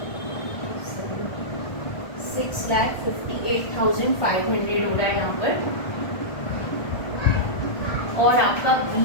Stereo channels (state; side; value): late; right; 1.4 ms